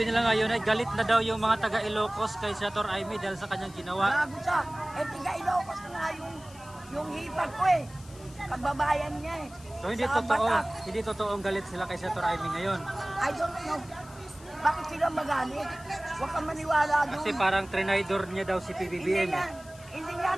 nila ngayon ay galit na daw yung mga taga Ilocos kay Senator Amy dahil sa kanyang ginawa. Gago siya. Eh, tiga Ilocos na nga yung hipag ko eh. Kababayan niya eh. So hindi Sa totoo, Batak. hindi totoong galit sila kay Senator Amy ngayon. I don't know. Bakit sila magalit? Huwag kang maniwala doon. Kasi parang trinidor niya daw si Hindi PBBM. hindi nga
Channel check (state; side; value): noise; left; hiss, 22 dB below the sound